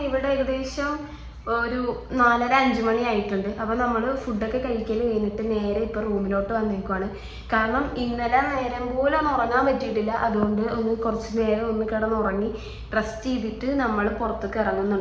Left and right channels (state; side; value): identical; both; correlation 1.00